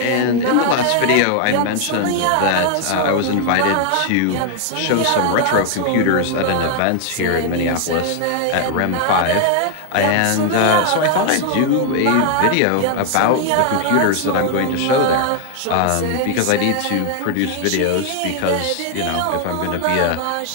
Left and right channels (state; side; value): different; both; correlation 0.00